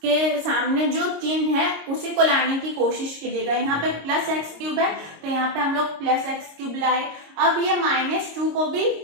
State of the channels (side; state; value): left; late; 26 ms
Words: के सामने जो चिन्ह है उसी को लाने की कोशिश कीजिएगा। यहाँ पे प्लस x³ है तो यहाँ पे हम लोग प्लस x³ लाए। अब ये -2 को भी